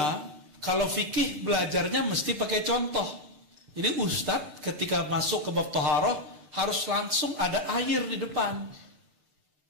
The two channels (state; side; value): late; left; 6.9 ms